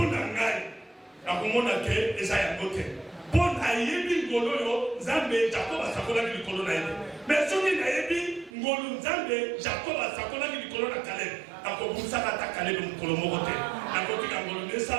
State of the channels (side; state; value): left; drops out; at 8.5 s